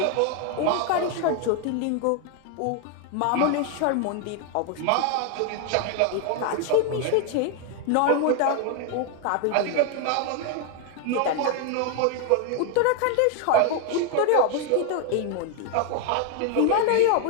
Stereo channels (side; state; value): both; different; correlation 0.01